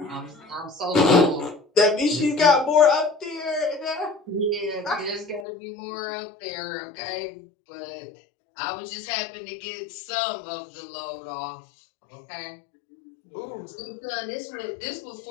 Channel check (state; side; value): drops out; right; at 5.5 s